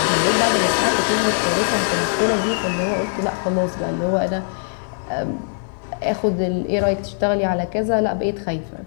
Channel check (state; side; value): silent; right; digital silence